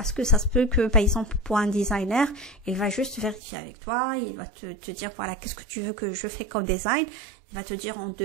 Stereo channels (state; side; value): drops out; left; at 3.4 s